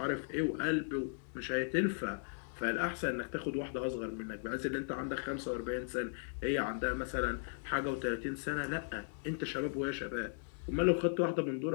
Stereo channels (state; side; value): silent; right; digital silence